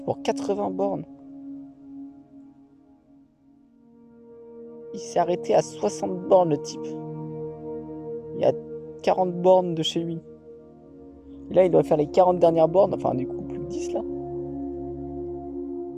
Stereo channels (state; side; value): identical; both; correlation 1.00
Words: pour 80 bornes. Il s'est arrêté à 60 bornes le type. Il y a 40 bornes de chez lui. Et là il doit faire les 40 dernières bornes, enfin du coup plus que 10 là.